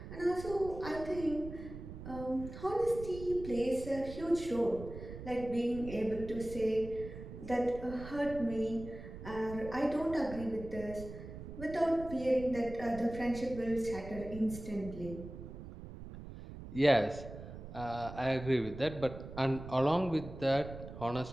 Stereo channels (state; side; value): noise; right; rumble, 11 dB below the sound